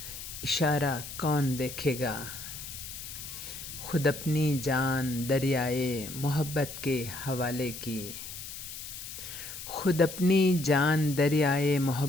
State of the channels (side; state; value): left; noise; hiss, 10 dB below the sound